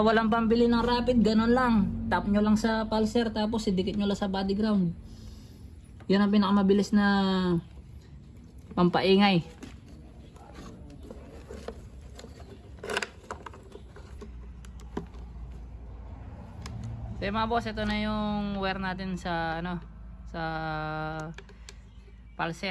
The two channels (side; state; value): both; identical; correlation 1.00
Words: walang pambili ng rapid, ganun lang. Tap nyo lang sa pulser, tapos idikit nyo lang sa body ground. Yan ang pinakamabilis na pampaingay. So mga boss, ito na yung wire natin sa ano, sa